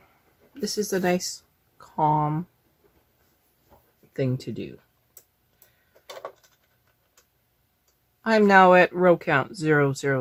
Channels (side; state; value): both; identical; correlation 1.00